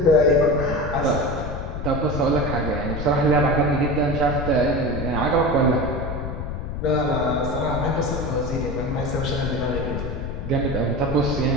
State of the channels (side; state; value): left; noise; rumble, 5 dB below the sound